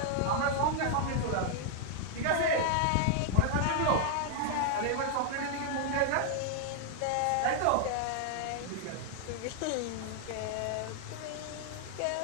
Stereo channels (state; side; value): different; both; correlation 0.00